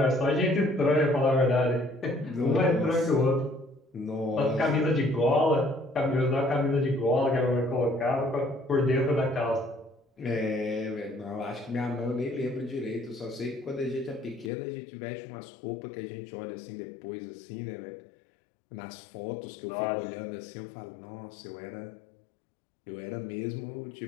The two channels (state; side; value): drops out; right; at 14.5 s